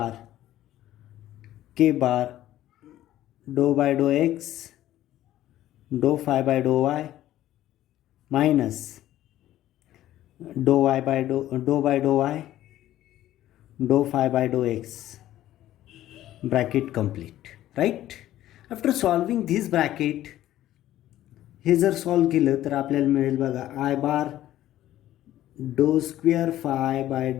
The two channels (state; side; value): quieter; right; 13.6 dB